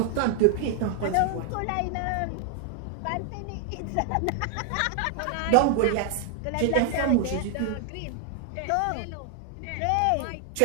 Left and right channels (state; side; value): different; both; correlation 0.00